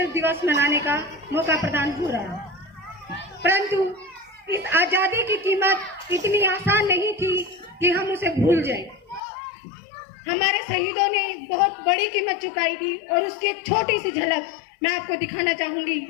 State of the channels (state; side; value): drops out; right; at 9.2 s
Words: दिवस मनाने का मौका प्रदान हो रहा है। परंतु इस आजादी की कीमत इतनी आसान नहीं थी कि हम उसे भूल जाएं। हमारे शहीदों ने बहुत बड़ी कीमत चुकाई थी और उसकी एक छोटी सी झलक मैं आपको दिखाना चाहूंगी।